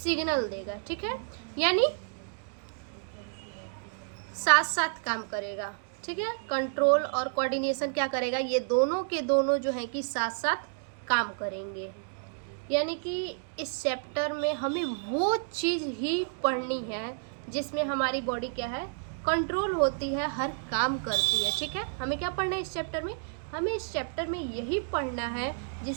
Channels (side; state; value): left; silent; digital silence